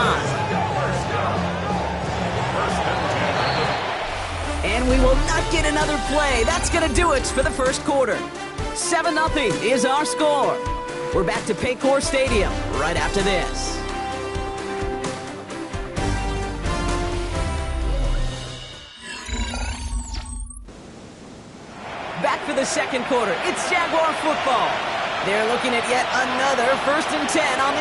And we will not get another play. That's going to do it for the first quarter. 7-0 is our score. We're back to Paycor Stadium right after this. Back for the second quarter. It's Jaguar football. They're looking at yet another 1st and 10 on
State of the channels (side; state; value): both; identical; correlation 1.00